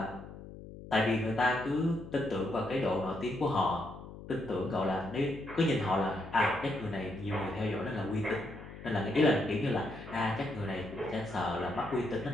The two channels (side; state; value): left; noise; hum, 14 dB below the sound